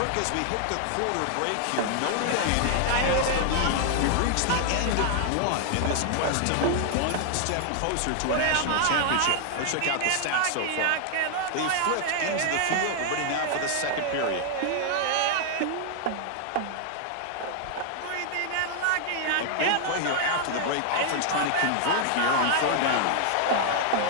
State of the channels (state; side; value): different; both; correlation 0.00